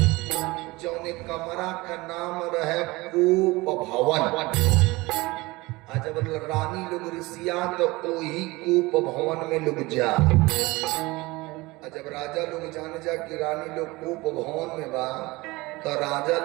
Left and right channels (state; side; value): quieter; left; 21.9 dB